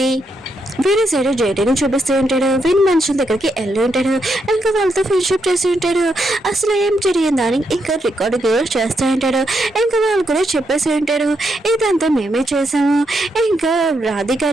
వేరే సైడ్ జైటీని చూపిస్తూ ఉంటాడు. వీని మనుషుల దగ్గరికి వెళ్ళి ఉంటాడు. ఇంకా వాళ్ళతో ఫ్రెండ్షిప్ చేసి ఉంటాడు. అసలు ఏం జరిగిందని ఇంకా రికార్డింగ్ చేస్తూ ఉంటాడు. ఇంకా వాళ్ళు కూడా చెప్పేసి ఉంటాడు, ఇదంతా మేమే చేసాము, ఇంకా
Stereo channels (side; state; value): both; normal; correlation 0.80